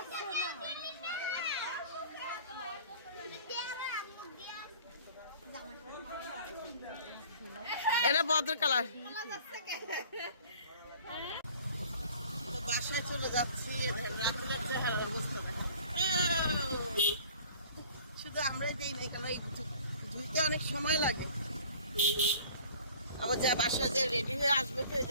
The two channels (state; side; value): inverted; both; correlation -0.49